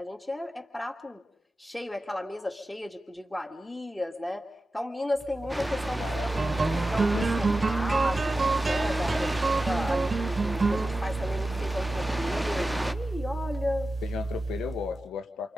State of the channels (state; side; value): normal; both; correlation 0.93